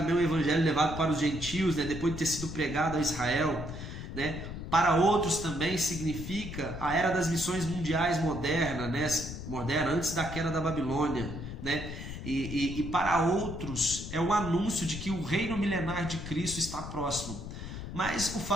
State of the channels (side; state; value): left; noise; rumble, 8 dB below the sound